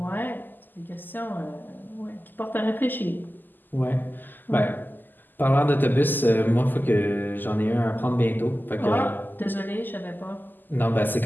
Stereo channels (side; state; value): right; late; 0.089 ms